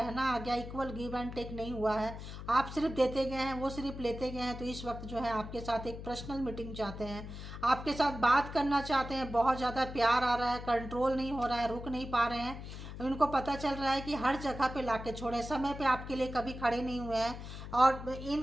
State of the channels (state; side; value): noise; left; hum, 10 dB below the sound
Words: आ गया। इक्वल गिव एंड टेक नहीं हुआ है, आप सिर्फ देते गए हैं, वो सिर्फ लेते गए हैं। तो इस वक्त जो है आपके साथ एक पर्सनल मीटिंग चाहते हैं, आपके साथ बात करना चाहते हैं। बहुत ज़्यादा प्यार आ रहा है, कंट्रोल नहीं हो रहा है, रुक नहीं पा रहे हैं। उनको पता चल रहा है कि हर जगह पे लाके छोड़े, समय पे आपके लिए कभी खड़े नहीं हुए हैं, और